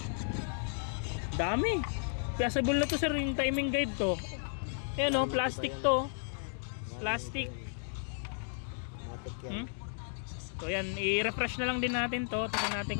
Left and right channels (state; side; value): silent; right; digital silence